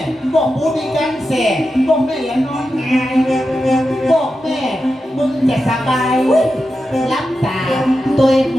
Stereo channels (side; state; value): both; normal; correlation 0.90